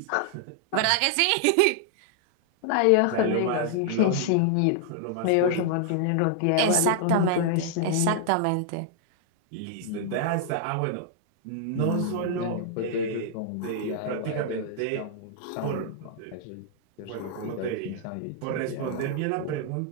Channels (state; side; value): different; both; correlation 0.00